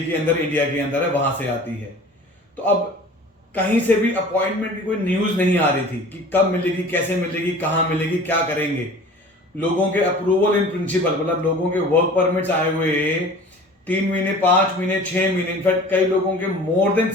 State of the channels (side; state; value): both; normal; correlation 0.43